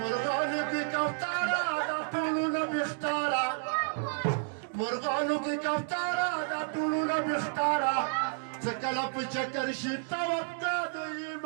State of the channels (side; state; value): left; silent; digital silence